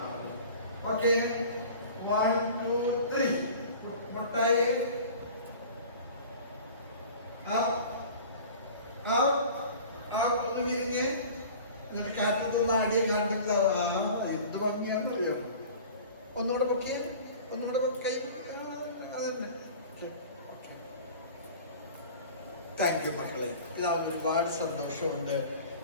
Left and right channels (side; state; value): both; inverted; correlation -0.42